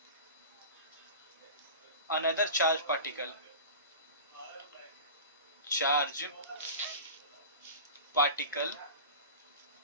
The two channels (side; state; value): both; inverted; correlation -0.34